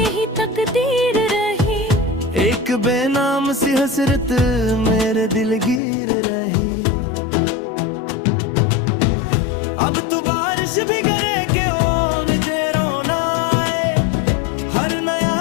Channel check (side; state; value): right; drops out; at 5.8 s